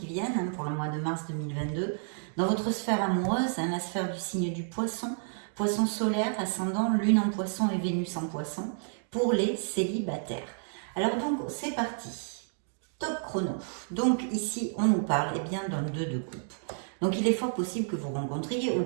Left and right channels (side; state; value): left; silent; digital silence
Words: viennent, hein, pour le mois de mars 2022. Dans votre sphère amoureuse, hein, la sphère du signe du poisson, poisson solaire, ascendant, lune en poisson et Vénus en poisson, pour les célibataires. Alors donc, c'est parti. Top chrono. Donc ici, on nous parle eh bien d'un 2 de coupe. Donc il est fort possible que vous rencontriez ou